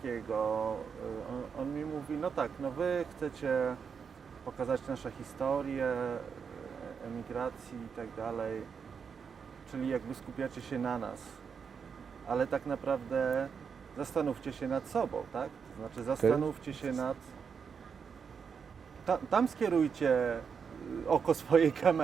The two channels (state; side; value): quieter; left; 6.4 dB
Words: on mi mówi, no tak, no wy chcecie pokazać nasze historie, emigracji i tak dalej, czyli jakby skupiacie się na nas, ale tak naprawdę zastanówcie się nad sobą, tak? To znaczy zastanówcie się nad... Tam skierujcie oko swojej